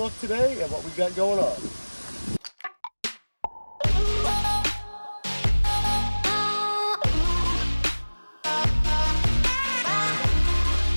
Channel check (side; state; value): both; inverted; correlation -1.00